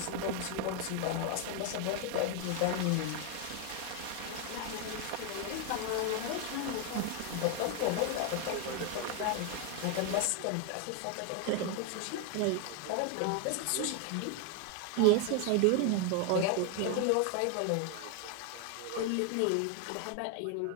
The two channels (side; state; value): both; different; correlation 0.01